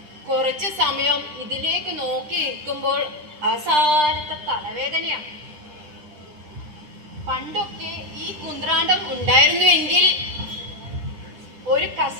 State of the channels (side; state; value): left; late; 9.9 ms